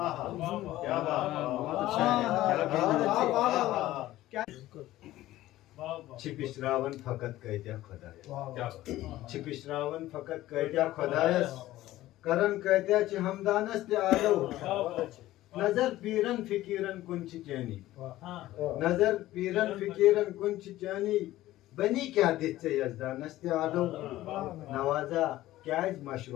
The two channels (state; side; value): quieter; right; 15.5 dB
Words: چھ پشراون فقط کۭتیاہ خۄدایس چھ پشراون فقط کۭتیاہ خۄدایس کرن کۭتیاہ چھ ہمدانس تہ آلو نظر پیرن فقیرن کُن چھ چٲنی نظر پیرن فقیرن کُن چھ چٲنی بنی کیاہ دِتھ ژےٚ یزدانس تہ آلو نوازا کیازِ